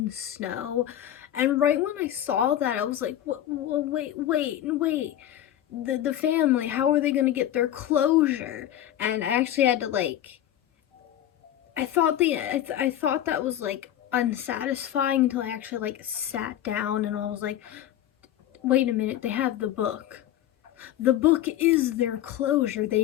the snow. And right when I saw that, I was like, wait. The family, how are they going to get their closure? And I actually had to I thought that was unsatisfying until I actually sat down and I was like, wait a minute, they have the book. The book is their closure. They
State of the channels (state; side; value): quieter; right; 12.0 dB